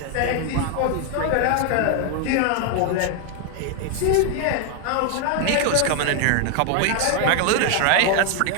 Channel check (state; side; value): different; both; correlation 0.01